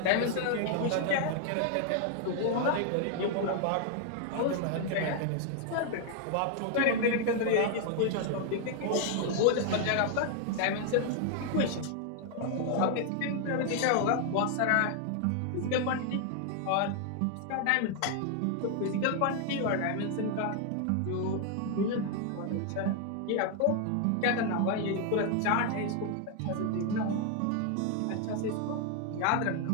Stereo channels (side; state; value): both; different; correlation 0.00